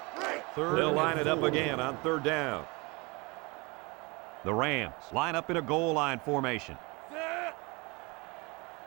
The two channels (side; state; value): left; quieter; 26.8 dB